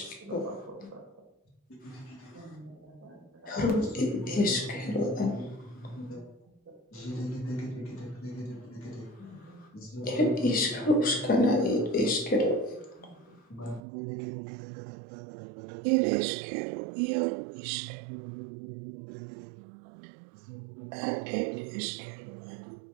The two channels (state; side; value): drops out; left; at 13.8 s